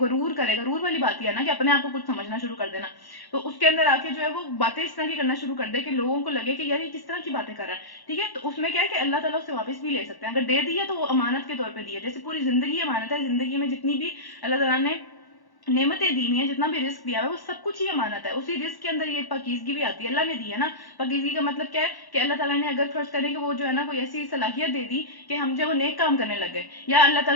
کرے، غرور والی بات یہ ہے نا کہ اپنے آپ کو کچھ سمجھنا شروع کر دینا، تو اس کے اندر آ کے جو ہے وہ باتیں اس طرح کی کرنا شروع کر دے کہ لوگوں کو لگے کہ یار یہ کس طرح کی باتیں کر رہا ہے. ٹھیک ہے. تو اس میں کیا ہے کہ اللہ تعالیٰ اسے واپس بھی لے سکتے ہیں. اگر دے دیا تو وہ امانت کے طور پہ دیا، جیسے پوری زندگی امانت ہے. زندگی میں جتنی بھی اللہ تعالیٰ نے نعمتیں دی ہوئی ہیں، جتنا بھی رزق دیا ہوا ہے، وہ سب کچھ ہی امانت ہے. اسی رزق کے اندر یہ پاکیزگی بھی آتی ہے، اللہ نے دی ہے نا. پاکیزگی کا مطلب کیا ہے کہ اللہ تعالیٰ نے اگر فرض کریں کہ وہ جو ہے نا کوئی ایسی صلاحیت دے دی کہ ہم جو نیک کام کرنے لگ گئے، یا اللہ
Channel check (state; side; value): late; right; 1.1 ms